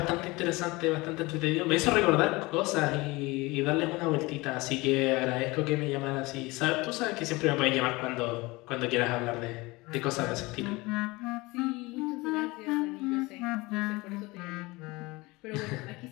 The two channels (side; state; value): right; quieter; 22.7 dB